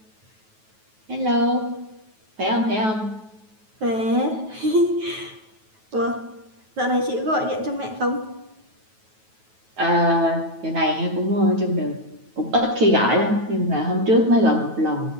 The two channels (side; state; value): left; late; 9.3 ms